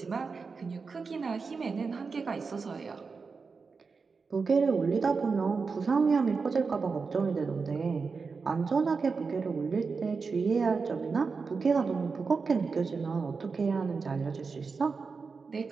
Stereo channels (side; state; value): left; quieter; 4.8 dB